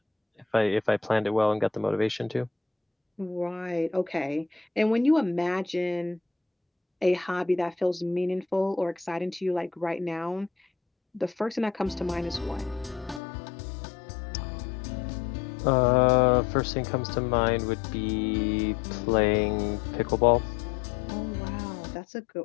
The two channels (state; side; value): drops out; right; at 13.2 s